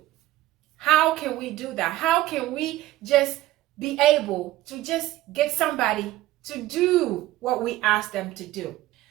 How can we do that? How can we just be able to just get somebody to do what we ask them to do?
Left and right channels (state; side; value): quieter; left; 15.8 dB